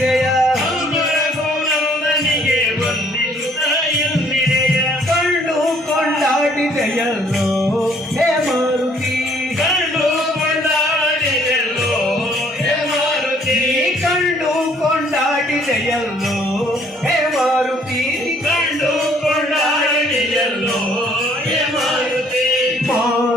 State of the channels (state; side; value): normal; both; correlation 0.62